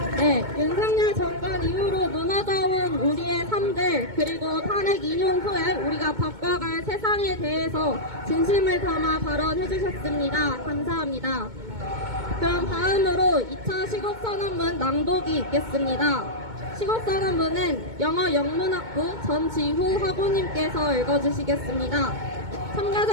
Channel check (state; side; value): late; left; 2.2 ms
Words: 네, 윤석열 정권 이후로 무너져온 우리의 그리고 탄핵 인용 후에 우리가 바꿔갈 세상에 대해서 진심을 담아 발언해 주셨습니다. 감사합니다. 그럼 다음으로 2차 시국선언문 낭독이 있겠습니다. 시국선언문은 영어 영문학부 전지후 학우님께서 읽어주시겠습니다.